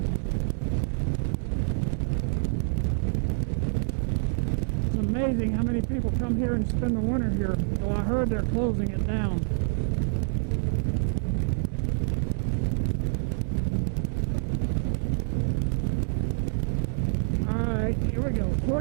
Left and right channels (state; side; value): silent; left; 60 dB below the other